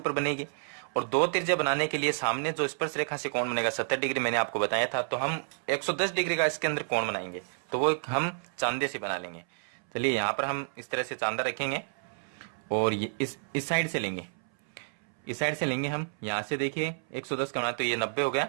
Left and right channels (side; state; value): left; silent; 58 dB below the other